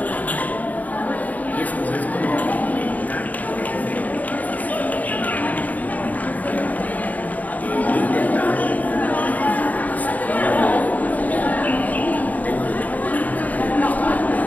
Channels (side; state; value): right; late; 0.075 ms